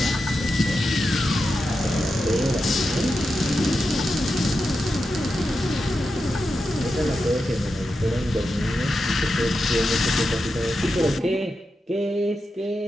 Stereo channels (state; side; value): normal; both; correlation 0.89